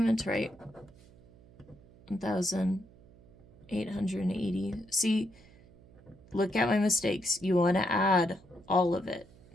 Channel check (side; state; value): right; noise; hum, 25 dB below the sound